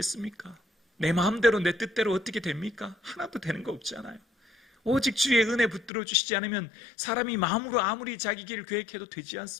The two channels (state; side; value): drops out; right; at 5.9 s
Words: 내 마음대로 내 뜻대로 어떻게 됩니까? 하나도 되는 거 없잖아요. 오직 주의 은혜 붙들어 주시지 않으면 사람이 마음으로 아무리 자기 길을 계획해도 되지